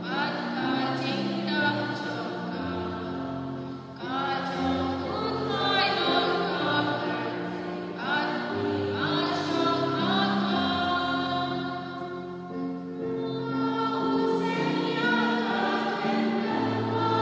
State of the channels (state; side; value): identical; both; correlation 1.00